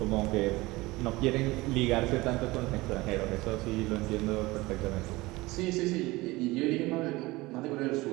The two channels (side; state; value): left; quieter; 20.9 dB